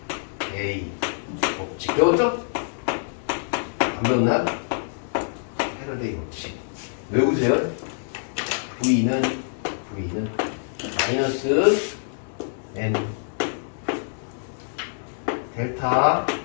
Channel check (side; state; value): right; silent; digital silence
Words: 법칙. 배웠죠? 안 배웠나? 패러데이 법칙. 외우세요. V는 마이너스 N 델타